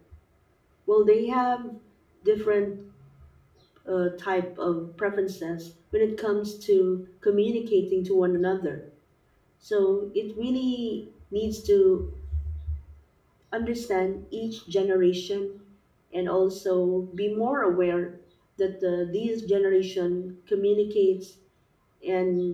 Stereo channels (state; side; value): identical; both; correlation 1.00